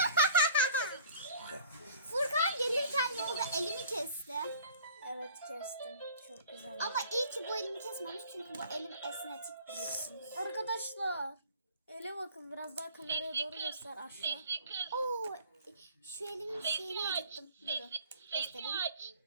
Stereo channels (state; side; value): inverted; both; correlation -0.48